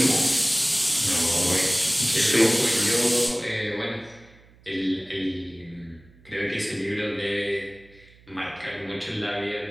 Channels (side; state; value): right; noise; hum, 27 dB below the sound